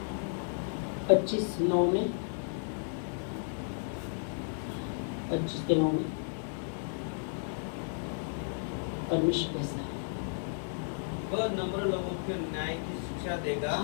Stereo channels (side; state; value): right; silent; digital silence